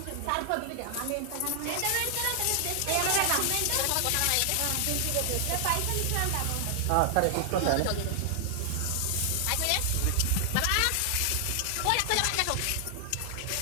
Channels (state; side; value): different; both; correlation 0.00